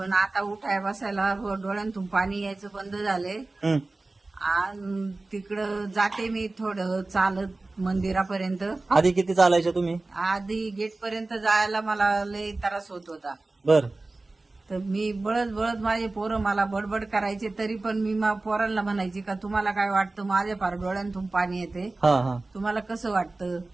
आता उठाय बसायला डोळ्यांतून पाणी यायचं बंद झाले. हं. आणि तिकडं जाते मी थोडं चालत मंदिरापर्यंत. आधी किती चालायचे तुम्ही? आधी गेट पर्यंत जायला मला लय त्रास होत होता. बर. तर मी बळत बळत माझे पोरं मला बडबड करायचे, तरी पण मी पोरांना म्हणायची का तुम्हाला काय वाटतं, माझ्या फार डोळ्यांतून पाणी येते, हा हा. तुम्हाला कसं वाटतं.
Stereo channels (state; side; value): quieter; left; 3.2 dB